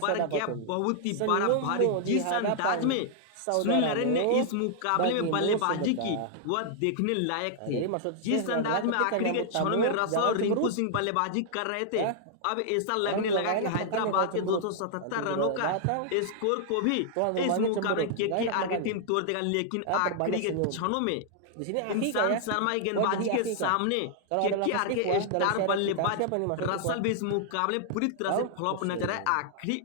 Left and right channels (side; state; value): both; different; correlation -0.01